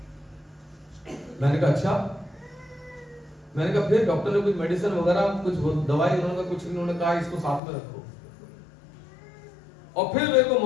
मैंने कहा अच्छा। मैंने कहा फिर डॉक्टर ने कुछ मेडिसिन वगैरह कुछ दवाई उन्होंने कुछ, उन्होंने कहा इसको साथ में रखो। और फिर मेरे को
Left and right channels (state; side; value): drops out; right; at 7.6 s